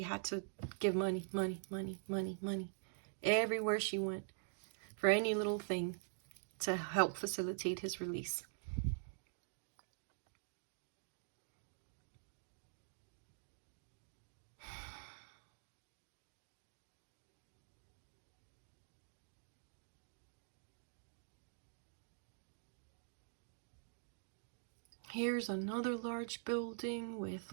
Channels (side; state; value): left; silent; digital silence